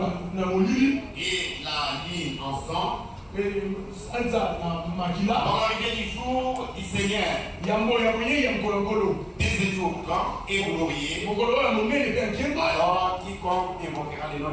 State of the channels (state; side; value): identical; both; correlation 1.00